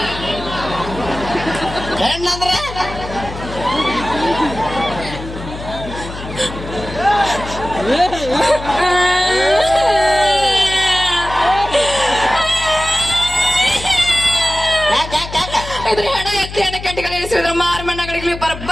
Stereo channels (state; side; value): noise; left; hum, 11 dB below the sound